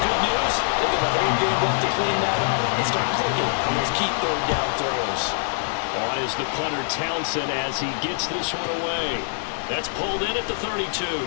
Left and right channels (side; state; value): right; silent; digital silence